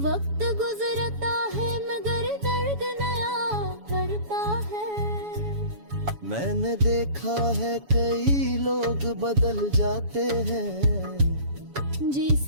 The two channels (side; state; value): left; late; 7.1 ms